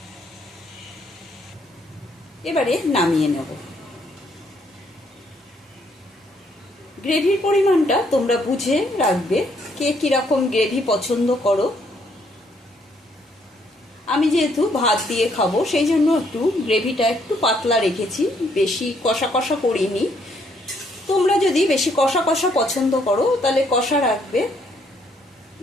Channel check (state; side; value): normal; both; correlation 0.69